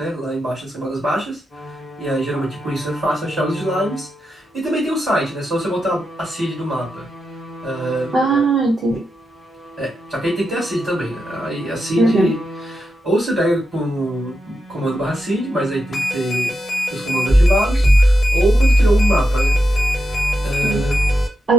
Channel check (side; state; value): both; normal; correlation 0.87